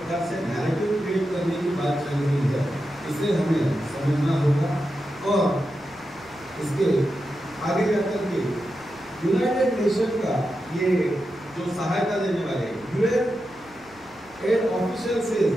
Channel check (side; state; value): right; noise; rumble, 27 dB below the sound